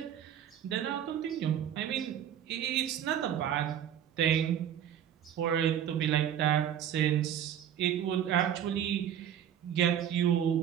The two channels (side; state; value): left; quieter; 9.9 dB